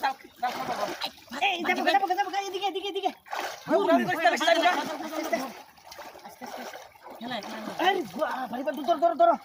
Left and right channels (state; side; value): identical; both; correlation 1.00